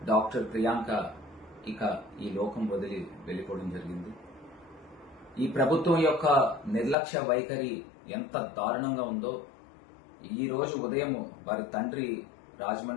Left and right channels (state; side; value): drops out; right; at 7.0 s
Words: డాక్టర్ ప్రియాంక ఇక ఈ లోకం వదిలి వెళ్ళిపోవడం జరిగింది. ఈ ప్రభుత్వం యొక్క నిర్లక్ష్య వైఖరి ఎంత దారుణంగా ఉందో ఈ రోజు ఉదయం వారి తండ్రి